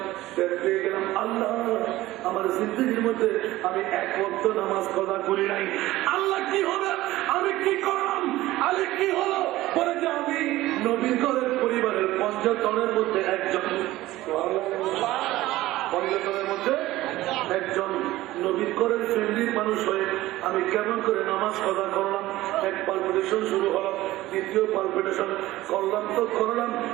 পেয়ে গেলাম আল্লাহ আমার জিন্দগির মধ্যে আমি এক ওয়াক্ত নামাজ কদা করি নাই। আল্লাহ কি হবে, আমি কি করলাম, আরে কি হলো, বলে যে আমি নবীর ঘরের পরিবারের পঞ্চতনের মধ্যে একজন, পঞ্চতনের মধ্যে একজন নবীর ঘরের ফ্যামিলির মানুষ হয়ে আমি কেমন করে নামাজ কদা করলাম। এক পালপিটেশন শুরু হলো, দ্বিতীয় পালপিটেশন করলাম তো করলাম,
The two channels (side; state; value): left; quieter; 16.8 dB